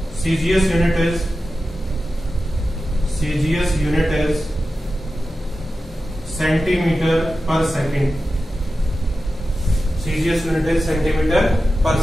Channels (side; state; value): both; normal; correlation 0.92